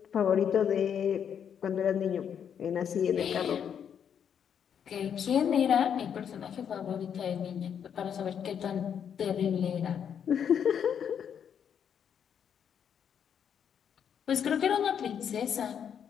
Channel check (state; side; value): quieter; right; 8.2 dB